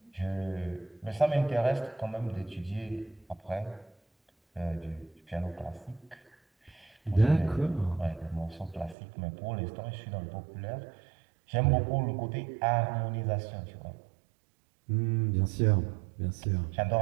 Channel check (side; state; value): left; drops out; at 9.0 s